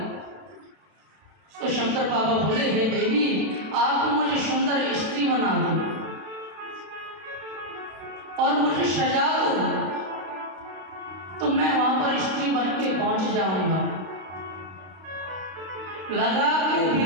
तो शंकर बाबा बोले हे देवी आप मुझे सुंदर स्त्री बना दो और मुझे सजा दो, तो मैं वहां पर स्त्री बन के पहुंच जाऊंगा। लगा के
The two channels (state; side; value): late; left; 32 ms